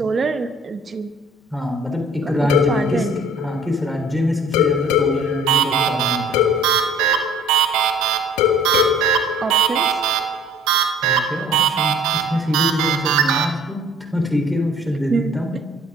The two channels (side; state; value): both; normal; correlation 0.51